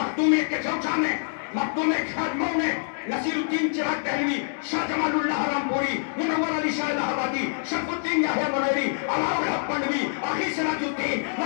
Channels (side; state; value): right; silent; digital silence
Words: کے چوچا میں، مخدوم خادموں نے، نصیر الدین چراغ دہلوی، شاہ جمال اللہ رامپوری، منور علی شاہ الہ آبادی، شرف الدین یحییٰ منیری، عوام الحق پنڈوی، آخی سراج الدین،